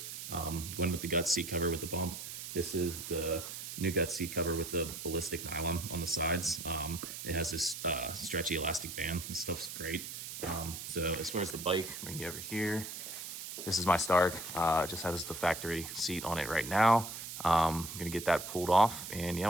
Going with the Guts seat cover with the bump. This is the new Guts seat cover with the ballistic nylon on the sides. It has this stretchy elastic band. This stuff's great. So as far as the bike, bring you over here. This is my Stark. Just has the factory seat on it right now. I'm gonna get that pulled off and yeah,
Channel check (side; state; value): right; noise; hiss, 8 dB below the sound